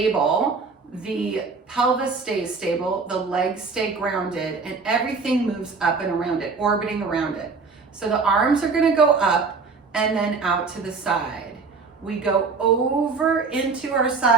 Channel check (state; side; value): quieter; left; 4.6 dB